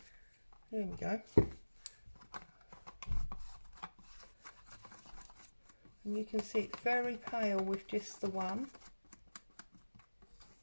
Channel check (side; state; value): both; inverted; correlation -1.00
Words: There we go. And you can see it's very pale with just the one.